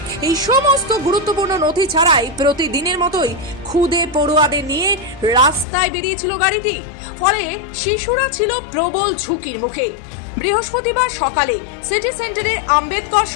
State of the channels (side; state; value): right; drops out; at 5.7 s